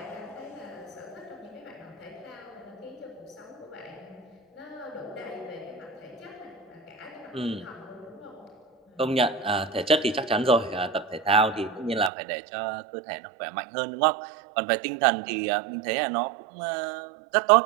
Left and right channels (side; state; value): left; drops out; at 12.1 s